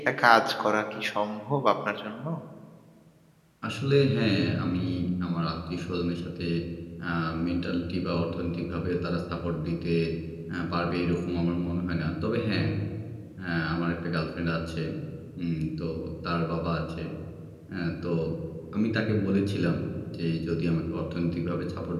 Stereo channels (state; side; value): identical; both; correlation 1.00